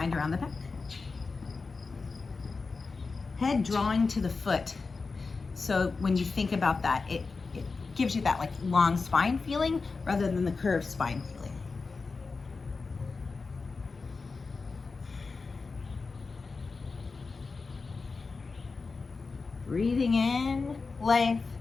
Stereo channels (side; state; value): right; quieter; 4.3 dB